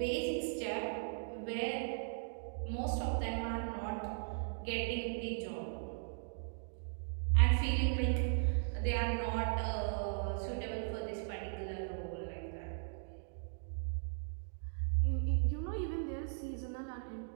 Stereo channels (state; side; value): silent; left; digital silence